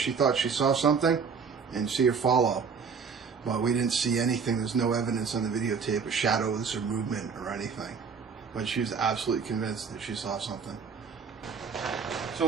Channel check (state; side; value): quieter; left; 5.8 dB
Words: thought she saw something and see her follow. But we didn't see anything. There's no evidence on the videotape of shadows or movement or anything. But she was absolutely convinced that she saw something.